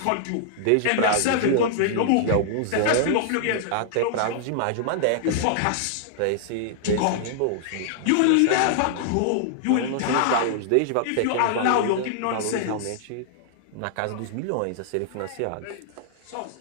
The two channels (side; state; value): both; different; correlation -0.01